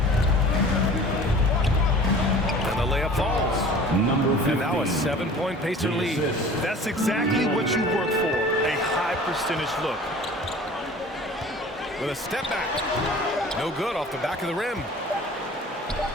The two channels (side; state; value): both; normal; correlation 0.44